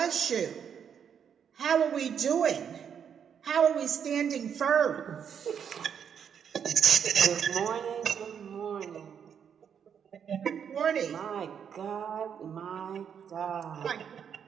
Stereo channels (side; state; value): left; quieter; 7.8 dB